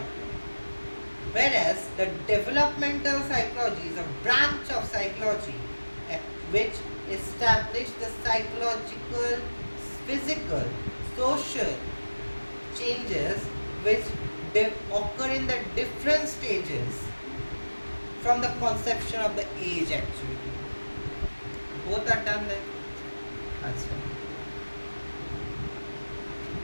Whereas the developmental psychology is a branch of psychology which establishes the psychological, physical, social changes which occur in the different stages from the conception of the age actually. Both are done then. Answer.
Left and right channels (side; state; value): both; inverted; correlation -1.00